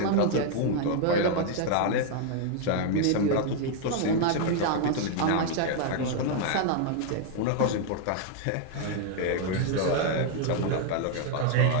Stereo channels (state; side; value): different; both; correlation 0.00